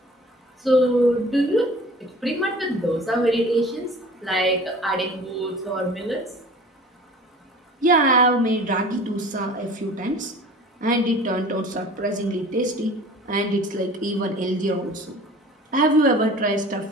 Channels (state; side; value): normal; both; correlation 0.44